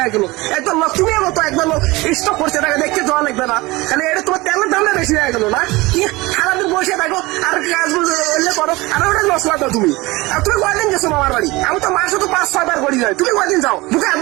গেল। একবার তুমি মতো একবার স্টক করছে, তাকে দেখতে যাওয়া লাগবে না, তাহলে এটা তোমার তেলের দামটা বেশি হয়ে গেল না? সারাদিন বসে থাকো আর কাজ করো, আর ওটা মশলা দাও তুমি। আর তুমি কয়দিন গেছো মামার বাড়ি? আমি তো মাসে তো 5-6 বার করি যাই, তুমি কয়দিন যাও? বুকে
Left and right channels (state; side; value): quieter; left; 21.8 dB